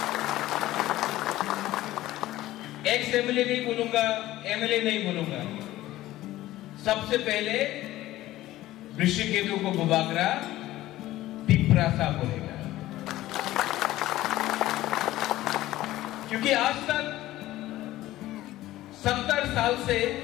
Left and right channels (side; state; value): right; quieter; 15.7 dB